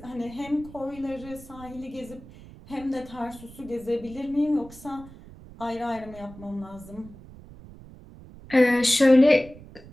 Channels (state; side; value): noise; right; rumble, 18 dB below the sound